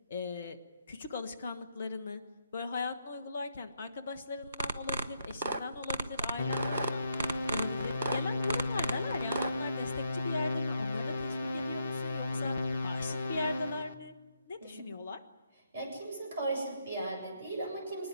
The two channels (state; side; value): inverted; both; correlation -0.79